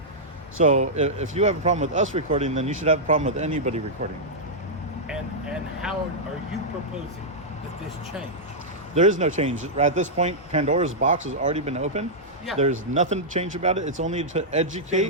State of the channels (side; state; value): both; normal; correlation -0.09